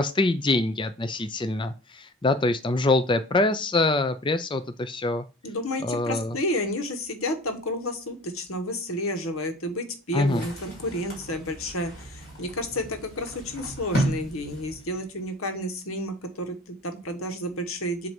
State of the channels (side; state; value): both; normal; correlation 0.42